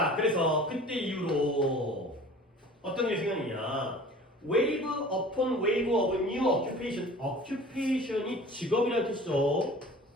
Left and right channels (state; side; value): normal; both; correlation 0.44